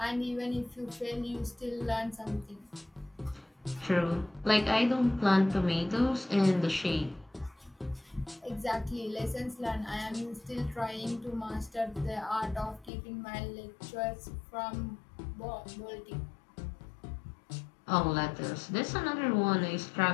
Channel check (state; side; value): drops out; right; at 12.9 s